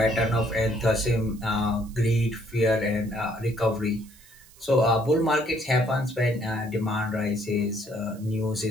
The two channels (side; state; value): right; noise; hiss, 25 dB below the sound